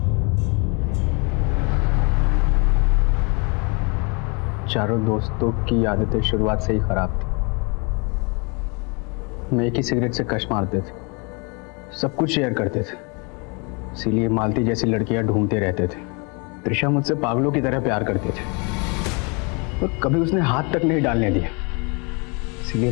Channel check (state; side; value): quieter; right; 32.2 dB